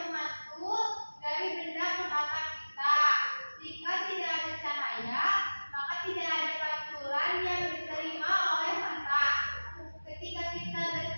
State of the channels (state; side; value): inverted; both; correlation -1.00